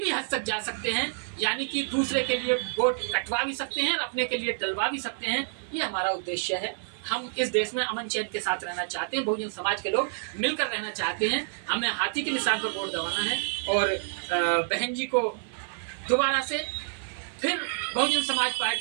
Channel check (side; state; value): left; silent; 59 dB below the other